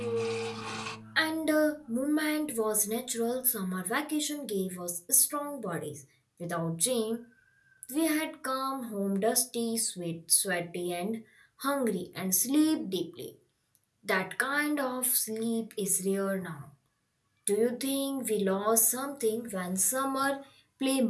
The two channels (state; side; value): identical; both; correlation 1.00